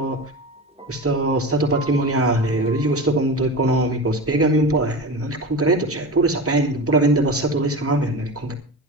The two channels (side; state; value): both; normal; correlation 0.27